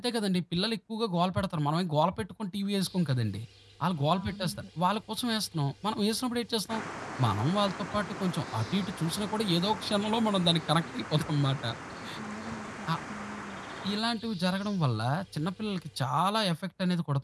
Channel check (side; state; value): both; identical; correlation 1.00